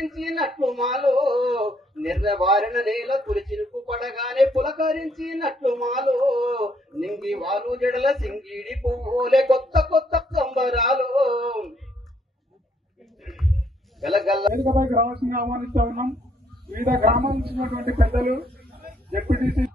మాలో నిర్వారణ నేల తులచిరుకు పడగానే పులకరించినట్లు మాలో నింగి వాలు జడల సింగిడి పువ్వులే కొత్త కొత్త సంబరాలు వేదికపైకి రావాల్సిందిగా ఆహ్వానిస్తూ ఉన్నాం. వివిధ గ్రామాల నుంచి పెద్దలు డిప్యూటీసీ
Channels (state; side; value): normal; both; correlation 0.70